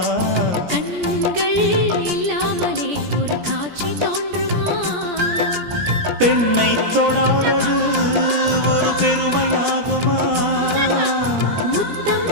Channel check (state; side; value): late; left; 17 ms